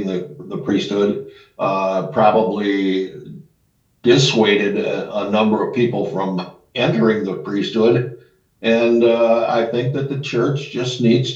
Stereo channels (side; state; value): both; identical; correlation 1.00